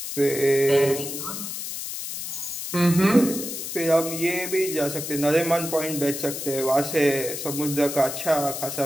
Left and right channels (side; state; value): left; noise; hiss, 6 dB below the sound